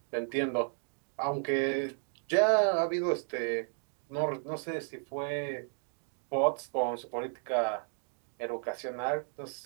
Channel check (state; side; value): silent; left; 56 dB below the other